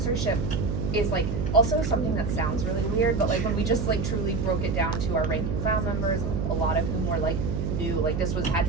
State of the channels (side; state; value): right; noise; hum, 1 dB below the sound